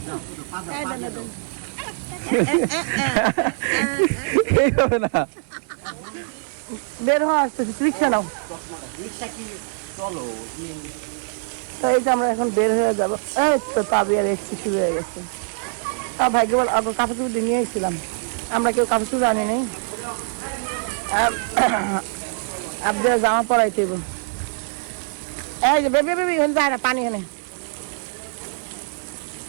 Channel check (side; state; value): left; silent; digital silence